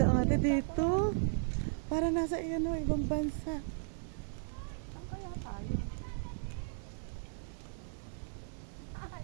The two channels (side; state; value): left; silent; digital silence